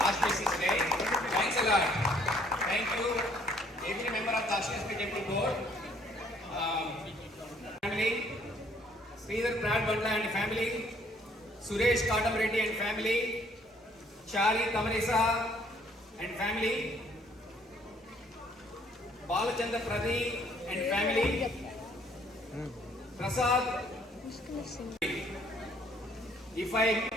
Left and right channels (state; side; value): normal; both; correlation 0.63